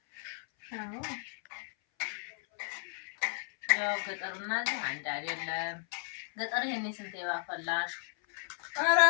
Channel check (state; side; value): silent; right; 55 dB below the other